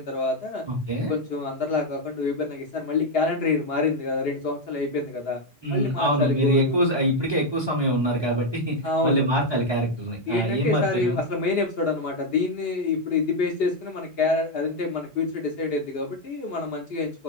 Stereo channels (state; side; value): normal; both; correlation 0.04